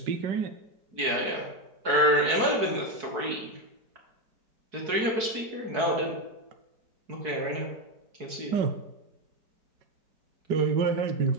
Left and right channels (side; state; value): left; late; 4.7 ms